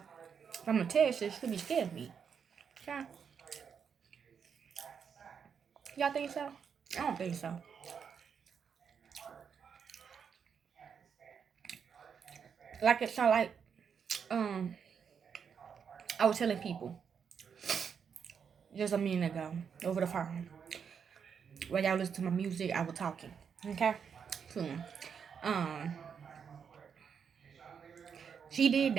I'm gonna tell you, she should be scared of me. Okay? Y'all think so? I don't think so. Like it sound like I was telling people just a minute ago over the phone. While y'all listen to my music, I was talking. Okay? So, she did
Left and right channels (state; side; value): quieter; left; 6.9 dB